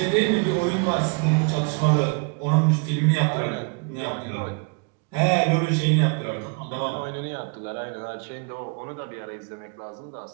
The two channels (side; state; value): left; quieter; 36.3 dB